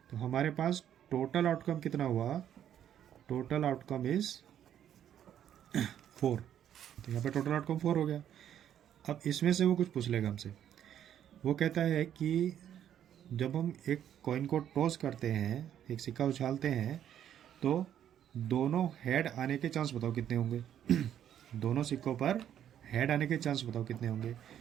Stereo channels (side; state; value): left; quieter; 10.2 dB